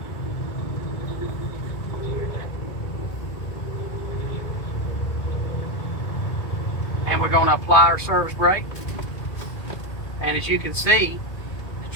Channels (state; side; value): late; right; 2.1 ms